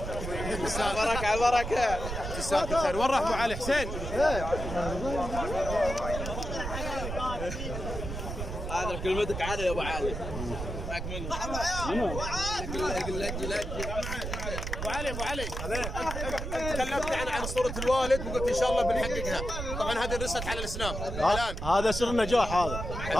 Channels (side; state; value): right; noise; rumble, 5 dB below the sound